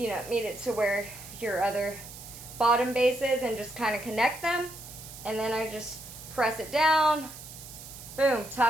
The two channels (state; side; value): noise; right; hiss, 14 dB below the sound